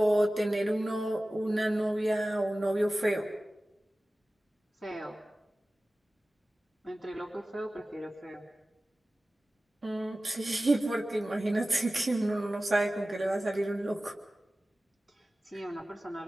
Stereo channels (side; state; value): both; normal; correlation 0.96